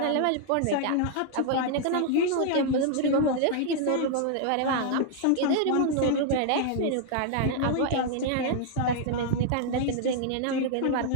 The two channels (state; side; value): different; both; correlation 0.00